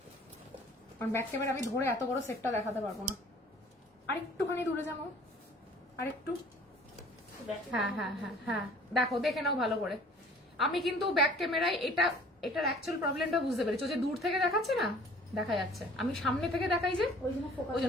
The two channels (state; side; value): normal; both; correlation 0.51